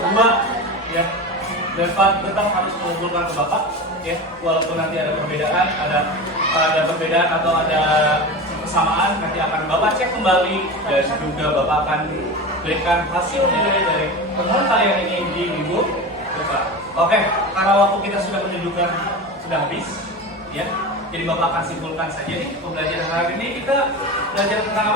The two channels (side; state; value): both; normal; correlation 0.27